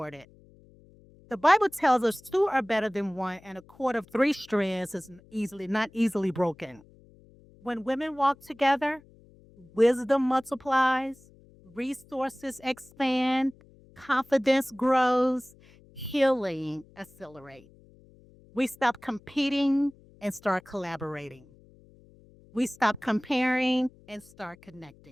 The Bible tells us two are better than one, and a cord of three strands is not easily broken. When women walk together, wisdom multiplies, resources expand, confidence grows, healing accelerates. We stop competing and start collaborating. We stop comparing and start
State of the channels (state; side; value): noise; left; hum, 26 dB below the sound